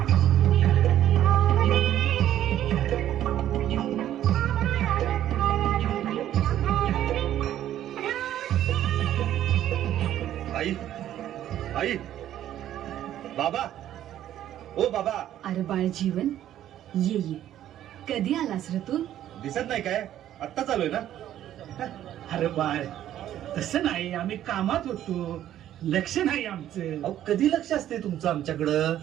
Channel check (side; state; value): left; quieter; 11.9 dB